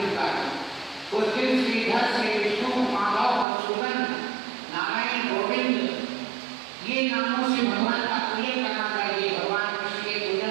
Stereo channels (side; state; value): left; drops out; at 3.5 s